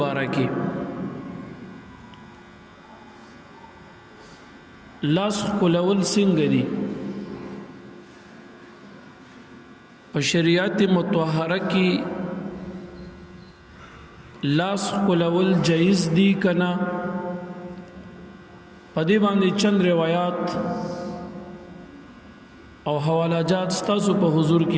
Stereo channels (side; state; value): both; identical; correlation 1.00